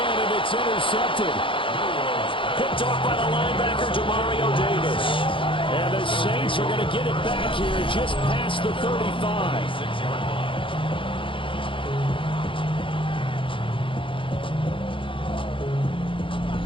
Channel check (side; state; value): right; late; 0.25 ms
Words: and it's intercepted. Picked off by the linebacker, Demario Davis. And the Saints are going to get it back here just past the 35.